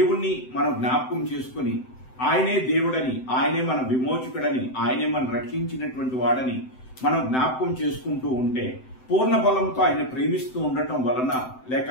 మనం జ్ఞాపకం చేసుకుని, ఆయనే దేవుడని, ఆయనే మన విమోచకుడని, ఆయనే మనం రక్షించినటువంటి వాడని మనం జ్ఞాపకం చేసుకుంటూ ఉంటే, పూర్ణ బలంతో ఆయన ప్రేమిస్తూ ఉండటం వలన,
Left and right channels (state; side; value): late; right; 7.8 ms